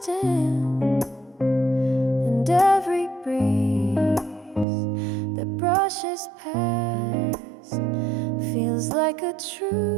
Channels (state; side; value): drops out; left; at 4.7 s